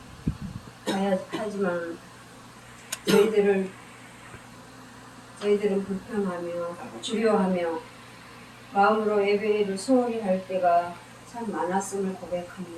하지만 저희들은 불평하며 두려워하며 마음으로 예배를 소홀히 할 때가 참 많았음을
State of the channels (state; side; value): identical; both; correlation 1.00